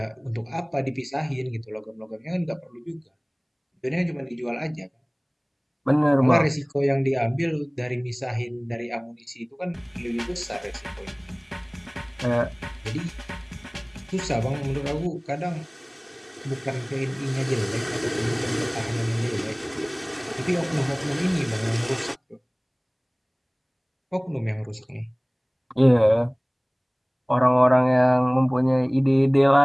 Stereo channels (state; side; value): identical; both; correlation 1.00